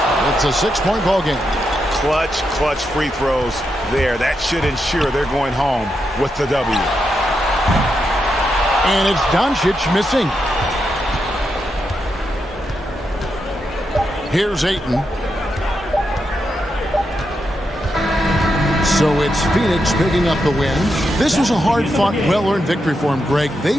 It's a 6-point ball game. Clutch free throws there. That should ensure they're going home with the W. And it's Doncic missing. Here's Ayton. So it's Phoenix picking up the win. This was a hard-fought, well-earned victory for him, Greg. They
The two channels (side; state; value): both; normal; correlation 0.84